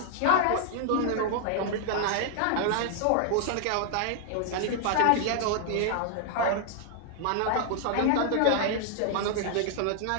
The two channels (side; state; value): both; different; correlation -0.01